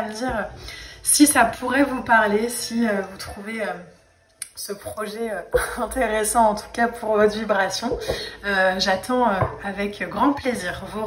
me dire si ça pourrait vous parler, si vous trouvez ce projet intéressant en tout cas pour votre vibration. J'attends avec grand plaisir vos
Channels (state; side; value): identical; both; correlation 1.00